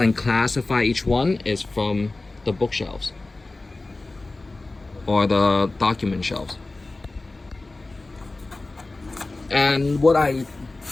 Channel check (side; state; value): right; quieter; 3.2 dB